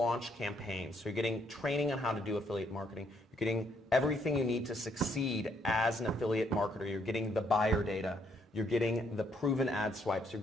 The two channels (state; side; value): normal; both; correlation 0.71